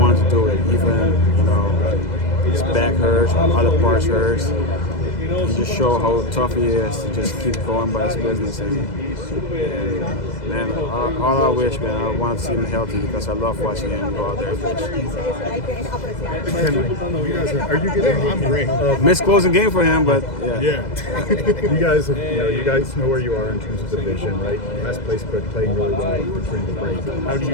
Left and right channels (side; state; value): right; late; 2.0 ms